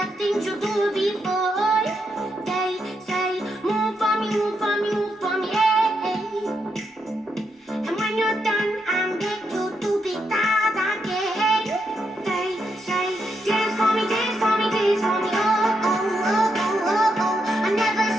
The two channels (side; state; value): both; normal; correlation 0.81